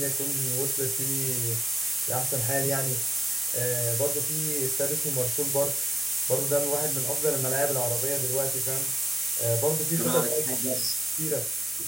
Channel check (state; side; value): noise; left; hum, 26 dB below the sound